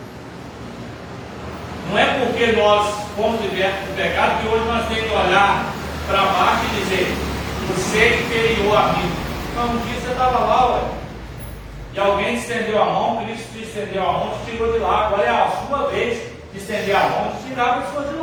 Não é porque nós fomos libertos do pecado que hoje nós temos que olhar para baixo e dizer: você é inferior a mim. Não, um dia você estava lá, ué, e alguém te estendeu a mão, Cristo te estendeu a mão, te tirou de lá. Agora é a sua vez de estender a mão e tirar a pessoa de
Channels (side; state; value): both; identical; correlation 1.00